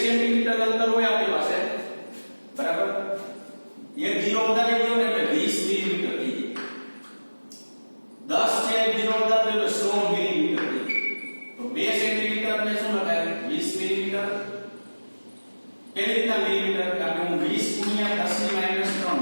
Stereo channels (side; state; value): both; inverted; correlation -1.00